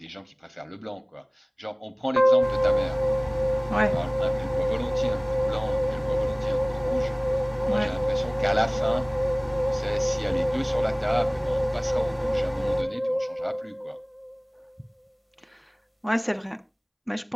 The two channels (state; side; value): identical; both; correlation 1.00